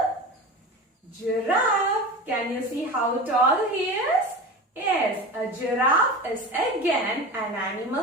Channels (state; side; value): normal; both; correlation 0.30